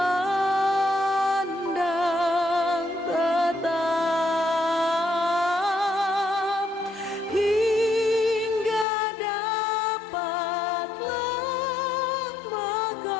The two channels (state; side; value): drops out; right; at 8.8 s